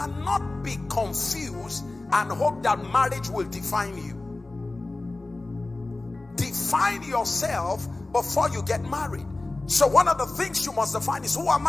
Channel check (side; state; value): right; quieter; 3.1 dB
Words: be confused and hope that marriage will define you. Define yourself before you get married. So one of the things you must define is, who am